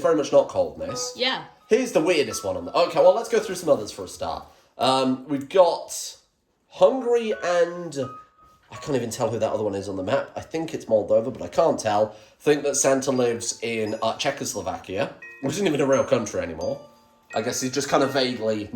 very much not coldness. Yeah. Here's the weirdest one on the... Okay, well, let's go through some others for a start. We've got Hungary and... I can't even tell who that other one is on the map. I think it's Moldova, but I can't tell. Think that Santa lives in Czechoslovakia, which isn't even a real country anymore. I guess he's just kind of vaguely,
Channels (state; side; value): identical; both; correlation 1.00